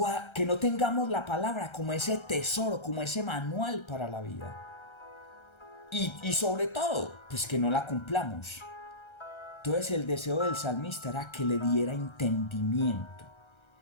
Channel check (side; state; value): right; late; 1.3 ms